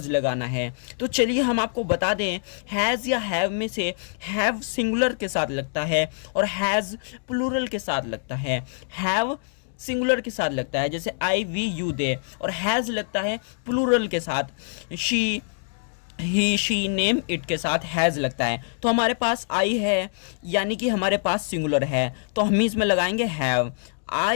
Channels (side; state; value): right; silent; digital silence